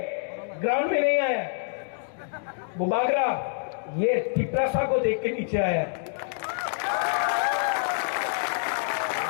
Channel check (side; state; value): right; silent; digital silence